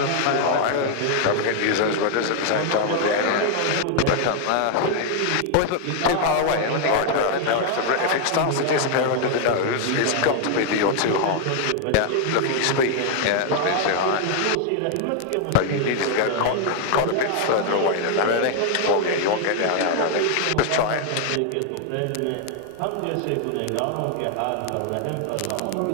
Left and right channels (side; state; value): both; different; correlation 0.00